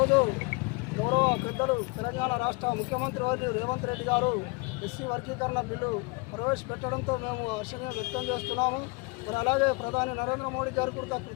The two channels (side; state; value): right; quieter; 28.5 dB